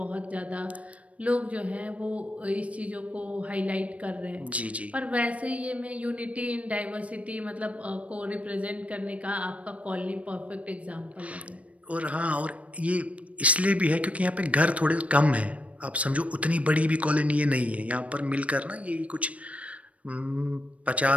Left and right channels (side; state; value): left; late; 0.065 ms